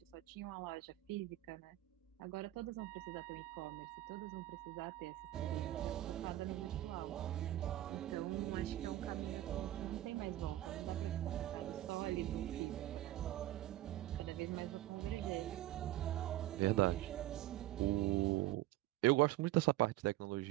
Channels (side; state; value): left; quieter; 15.0 dB